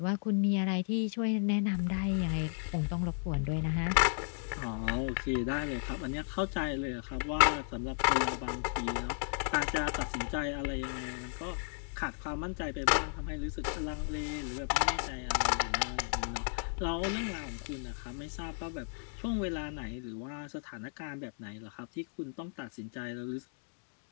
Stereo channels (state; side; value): silent; right; 55 dB below the other